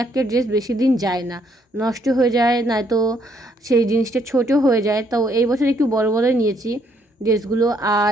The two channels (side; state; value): both; normal; correlation 0.70